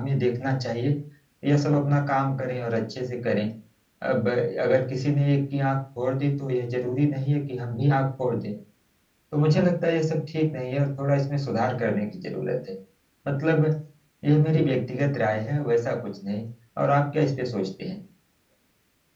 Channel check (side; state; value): both; identical; correlation 1.00